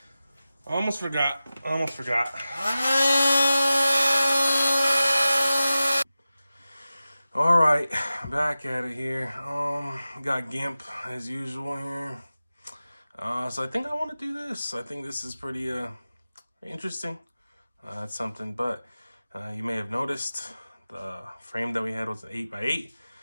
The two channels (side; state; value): both; inverted; correlation -0.95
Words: I almost forgot. All right, back at it here. Got GIMP as usual here. So I think I want to do this. I think this is pretty interesting. That's something, but you may have noticed the frame that we had was an 8x8,